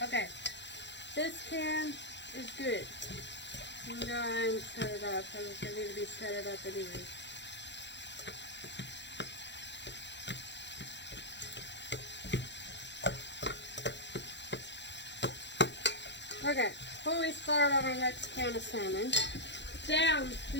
Okay, this can is good. I'm going to set it up because I need to be set it up anyway. Okay, before we start on our next can of salmon, down,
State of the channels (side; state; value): right; late; 0.52 ms